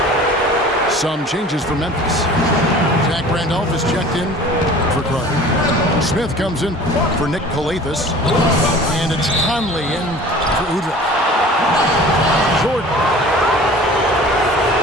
Some changes for Memphis. Zach Randolph is checked in for Carter. Smith comes in for Nick Calathis. And it's Conley in for Udrich. Jordan.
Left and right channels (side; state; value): both; normal; correlation 0.44